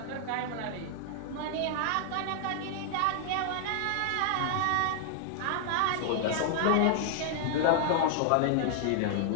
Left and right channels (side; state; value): both; different; correlation 0.00